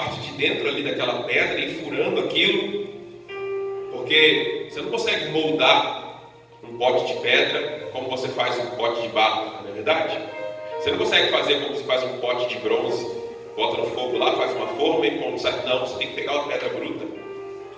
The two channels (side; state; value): both; identical; correlation 1.00